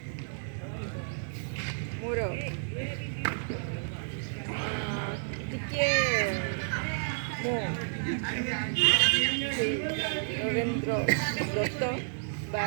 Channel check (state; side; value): silent; left; digital silence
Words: मोर टिके मो रवींद्र दत्त बा